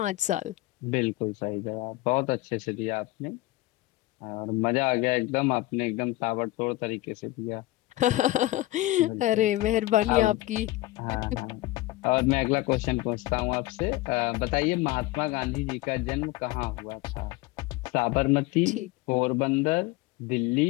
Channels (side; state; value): right; quieter; 18.1 dB